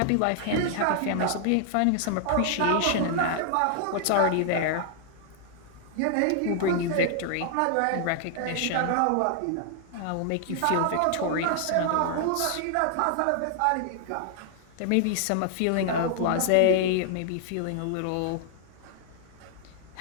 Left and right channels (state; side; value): different; both; correlation 0.00